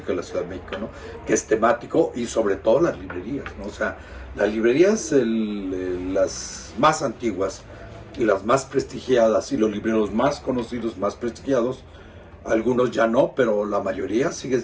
de la Ciudad de México, ¿no? Que es temático, y sobre todo las librerías, ¿no? O sea, las librerías, las más antiguas y las más prestigiadas, y los libreros más conocidos, más prestigiados, algunos ya no, pero la mayoría sigue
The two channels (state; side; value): identical; both; correlation 1.00